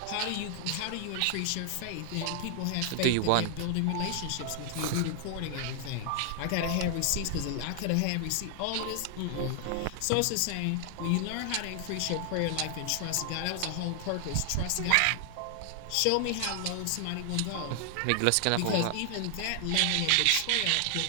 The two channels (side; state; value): both; different; correlation 0.00